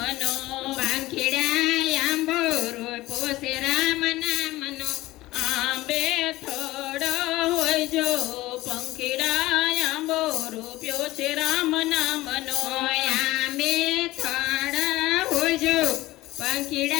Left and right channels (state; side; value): quieter; right; 17.9 dB